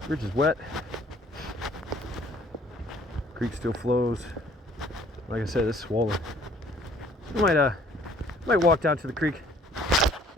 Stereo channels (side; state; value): both; normal; correlation 0.57